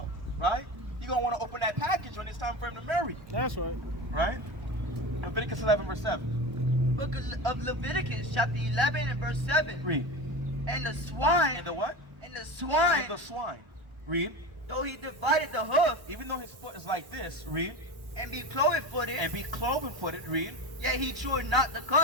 right? You're going to want to open that package when it's time for him to marry. That's right. Right? Leviticus 11 verse 7. Book of Leviticus, chapter 11 and verse 7. Read. And the swine. And the what? And the swine. And the swine. Read. Though he divided the hoof. Even though his foot is like this. Read. And be cloven-footed. And be cloven-footed. Read. Yet he chewed not the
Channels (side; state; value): left; late; 1.1 ms